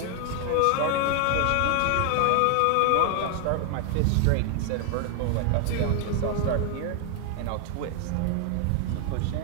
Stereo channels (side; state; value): both; different; correlation 0.00